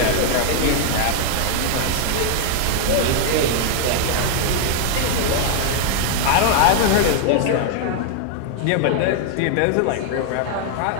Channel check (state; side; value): different; both; correlation 0.00